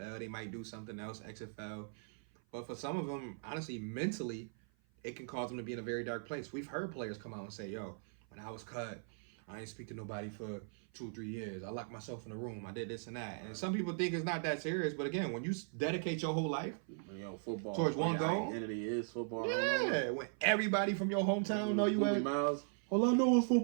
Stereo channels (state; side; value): silent; left; 52 dB below the other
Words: They might do something else, XFL. But for some of them, honestly, mentally, it can cause them to be in a very dark place. We've heard players come out and say, yo, when I was cut, I ain't speak to nobody for 2 or 3 years. I locked myself in a room. I did this and that. And some people think it's not that serious. But again, when you dedicate your whole life Football towards one goal. Identity is football. Yeah. When everybody from your hometown know you Movie at. Miles. All I know is